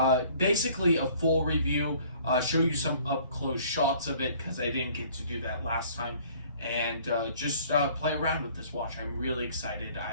basically a full review, show you some up close shots of it because I didn't get to do that last time, and just play around with this watch. I'm really excited.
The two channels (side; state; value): both; inverted; correlation -0.55